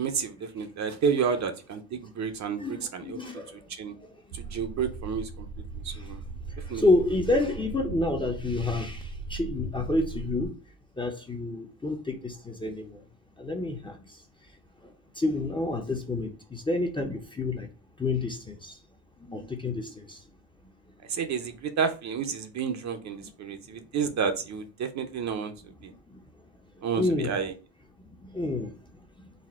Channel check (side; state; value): both; normal; correlation 0.40